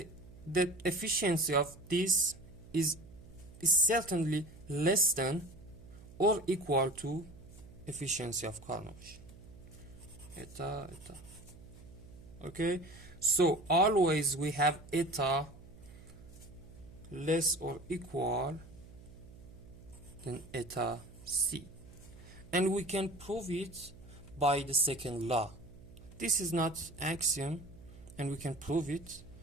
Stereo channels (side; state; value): right; noise; hum, 19 dB below the sound